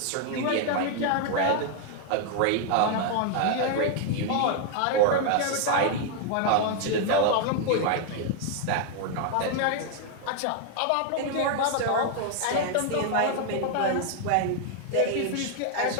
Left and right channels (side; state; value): both; different; correlation 0.00